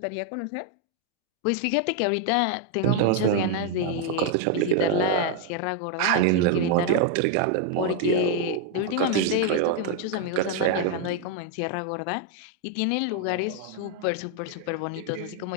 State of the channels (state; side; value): different; both; correlation 0.01